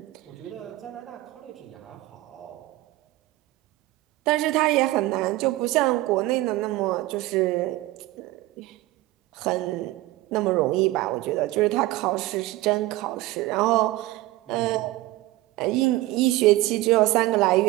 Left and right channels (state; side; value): quieter; left; 17.7 dB